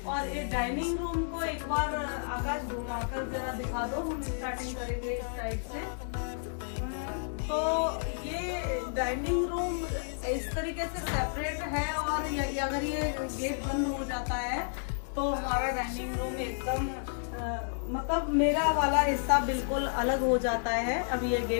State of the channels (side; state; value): right; silent; 57 dB below the other